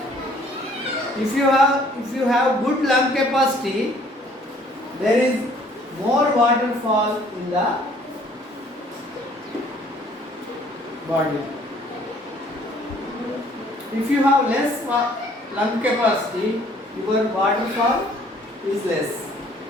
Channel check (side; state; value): both; normal; correlation 0.58